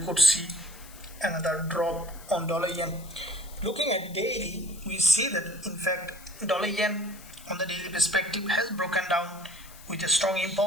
could see another drop on dollar yen. Looking at daily, we see that in fact dollar yen on the daily perspective has broken down with a strong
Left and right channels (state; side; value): noise; left; hiss, 19 dB below the sound